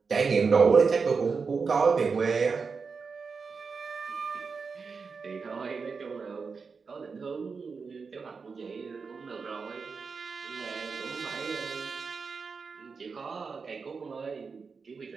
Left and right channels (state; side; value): quieter; left; 5.1 dB